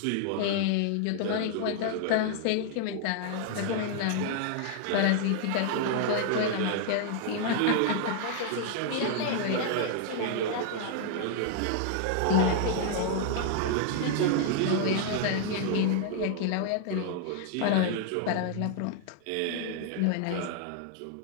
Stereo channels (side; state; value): both; different; correlation 0.00